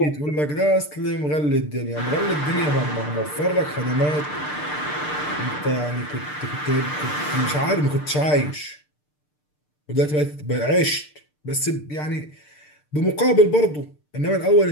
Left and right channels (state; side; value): late; right; 6.7 ms